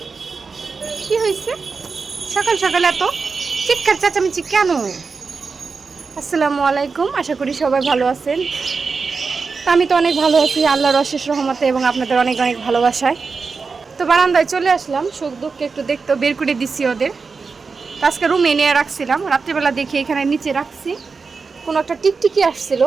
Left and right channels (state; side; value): quieter; left; 4.8 dB